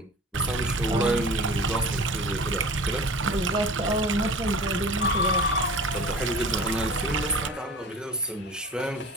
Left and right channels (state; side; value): normal; both; correlation 0.39